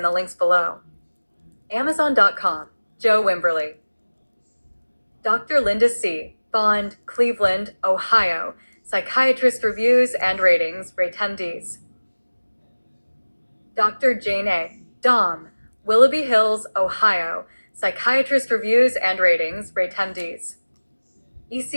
the links below. Amazon.com, Joe Wimberly. Dr. Linda C., Bond, Cleveland, Ohio, Psychiatrist Reviews and Ratings, rate 10Ds. Dr. Jane A., Dom, Willoughby Hills, Ohio, Psychiatrist Reviews and Ratings, rate 10Ds.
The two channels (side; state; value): both; inverted; correlation -1.00